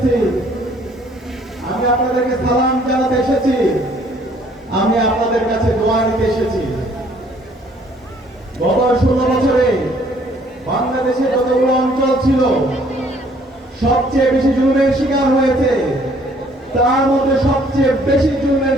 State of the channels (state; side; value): normal; both; correlation 0.61